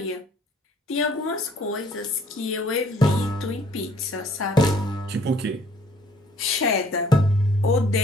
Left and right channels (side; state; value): both; normal; correlation 0.59